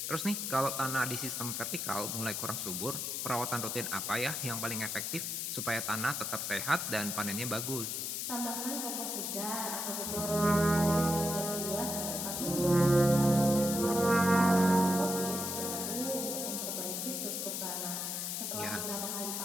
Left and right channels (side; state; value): left; noise; hiss, 3 dB below the sound